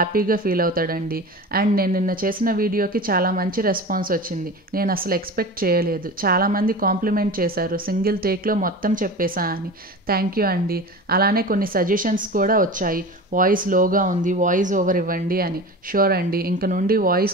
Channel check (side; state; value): both; normal; correlation 0.32